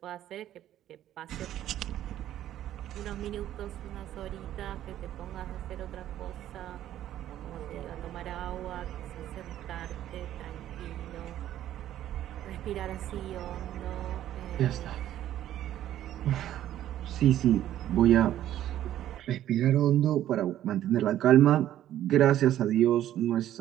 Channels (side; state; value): left; quieter; 12.2 dB